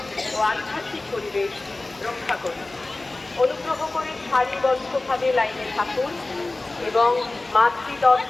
ও আধ্যাত্মিক পরিবেশ রক্ষা করুন। অনুগ্রহ করে সারিবদ্ধভাবে লাইনে থাকুন এবং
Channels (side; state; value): right; quieter; 3.0 dB